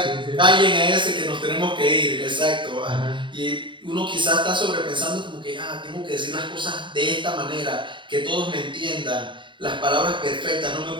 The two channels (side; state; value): left; late; 0.23 ms